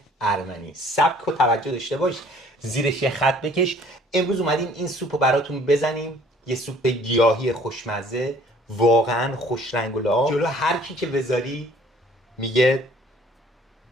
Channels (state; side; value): normal; both; correlation 0.56